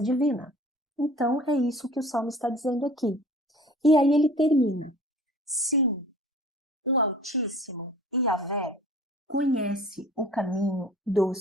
divina. Então, é isso que o Salmo está dizendo aqui. E aí ele termina. Sim, o Altíssimo, Yahvé, conhece o caminho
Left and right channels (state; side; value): normal; both; correlation 0.45